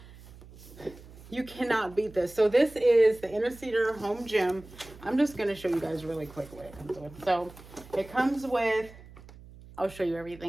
you cannot beat this. So this is the INNOCEDEAR Home Gym. I'm just going to show you guys really quick what it comes with. So it comes with, I'll show you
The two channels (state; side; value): noise; right; hum, 19 dB below the sound